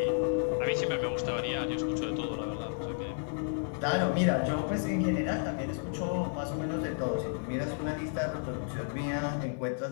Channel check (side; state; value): right; silent; 56 dB below the other